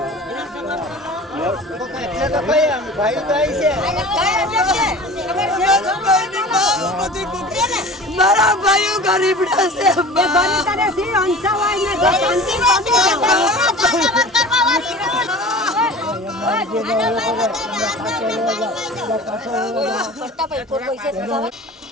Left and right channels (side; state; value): both; normal; correlation 0.39